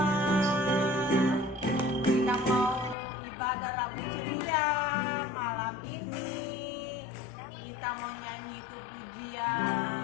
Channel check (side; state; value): right; drops out; at 3.0 s